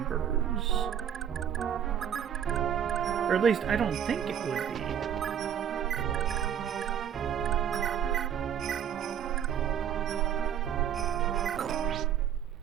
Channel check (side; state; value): left; quieter; 9.1 dB